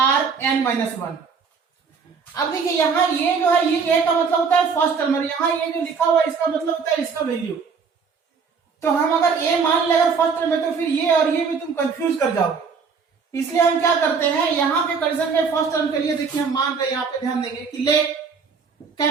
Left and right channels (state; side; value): quieter; left; 5.6 dB